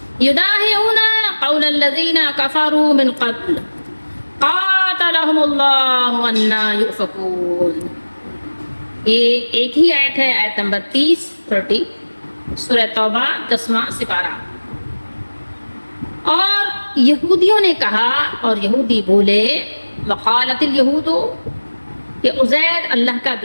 يداهئون قول الذين كفروا من قبل قاتلهم اللہ انا یؤفکون. یہ ایک ہی آیت ہے، آیت نمبر 30 سورہ توبہ 10واں سپارہ. اور یہودیوں نے کہا اور یہودی بولے وقالت الیہود کہ عزیر اللہ کا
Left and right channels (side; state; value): both; inverted; correlation -1.00